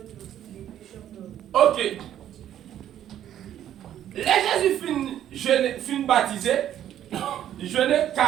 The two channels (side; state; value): left; quieter; 11.1 dB